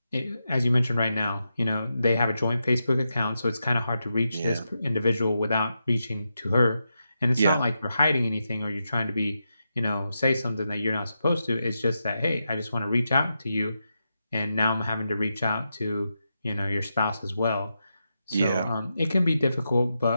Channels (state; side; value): inverted; both; correlation -0.87